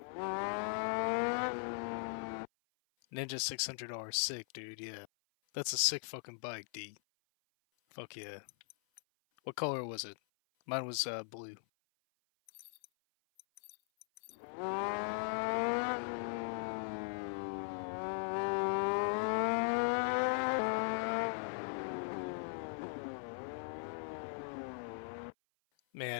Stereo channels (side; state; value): right; silent; 52 dB below the other